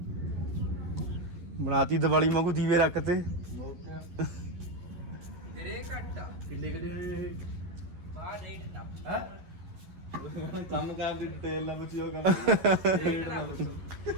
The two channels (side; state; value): left; late; 11 ms